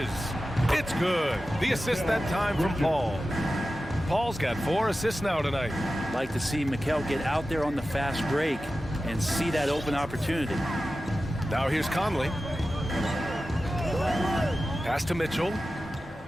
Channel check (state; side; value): normal; both; correlation 0.94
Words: It's good. The assist that time from Paul. Paul's got 4 assists now tonight. Like to see Mikel get out there on the fast break and see that open opportunity. Now here's Conley. Pass to Mitchell.